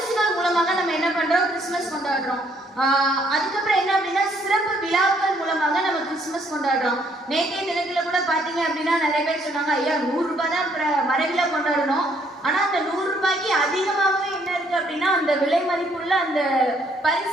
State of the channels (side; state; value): both; normal; correlation 0.67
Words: மூலமாக நம்ம என்ன பண்றோம், கிறிஸ்துமஸ் கொண்டாடுறோம். அதுக்கப்புறம் என்ன அப்படின்னா, சிறப்பு விழாக்கள் மூலமாக நம்ம கிறிஸ்துமஸ் கொண்டாடுறோம். நேற்றைய தினத்துல கூட பாத்தீங்க அப்படின்னா நிறைய பேர் சொன்னாங்க, ஐயா 100 ரூபாய் தான் மரவிழா கொண்டாடணும், ஆனா அந்த 100 ரூபாய்க்கு அதிகமாகவே என்ன இருக்கு அப்படின்னா அந்த விலை மதிப்புள்ள அந்த